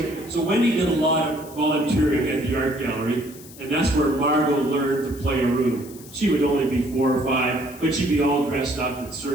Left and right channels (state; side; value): noise; left; hiss, 19 dB below the sound